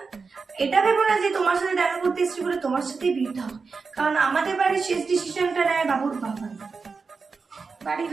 এটা ভেবো না যে তোমার সাথে দেখা করতে এসছি বলে তোমার সাথেই বিয়েটা হবে, কারণ আমাদের বাড়ির শেষ ডিসিশনটা নেয় বাবুর বাবা। বাড়ির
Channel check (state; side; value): quieter; left; 4.8 dB